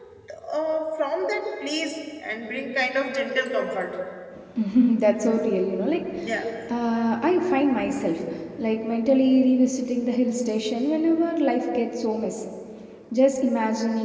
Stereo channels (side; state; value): both; identical; correlation 1.00